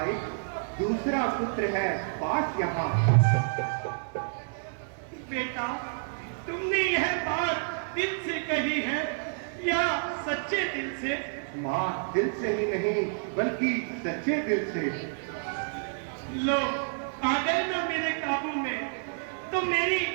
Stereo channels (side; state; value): left; silent; digital silence